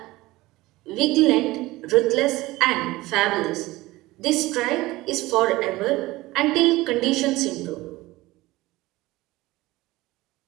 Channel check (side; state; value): left; quieter; 19.2 dB